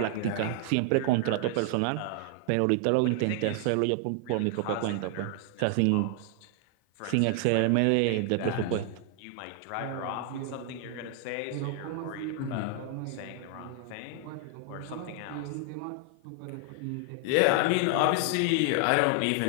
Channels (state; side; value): different; both; correlation 0.00